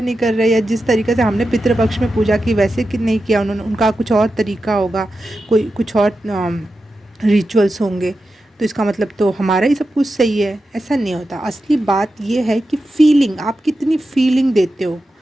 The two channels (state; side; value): normal; both; correlation 0.90